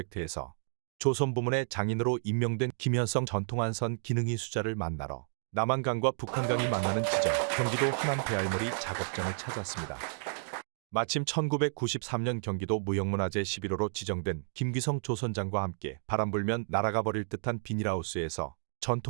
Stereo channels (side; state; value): left; silent; digital silence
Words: 조선 부문의 장인으로 임명된 김현성 전통한선 기능이 수자를 만나러 남한강과 북한강이 만나는 지점 경기도 하남 배알머리 작업장을 찾았습니다. 마침 1993년 경기도 무형문화재 11호로 지정된 김귀성 조선장과 함께 바람 불면 날아가 버릴 듯한 비닐하우스에서